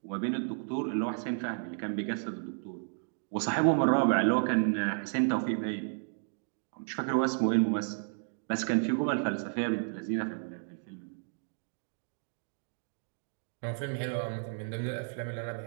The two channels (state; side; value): silent; left; 56 dB below the other